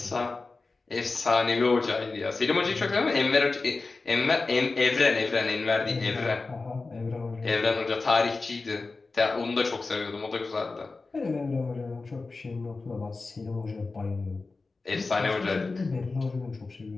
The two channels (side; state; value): right; quieter; 3.8 dB